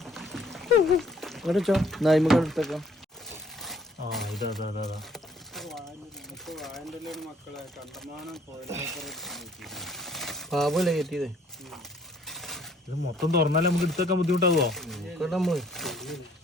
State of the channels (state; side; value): normal; both; correlation 0.61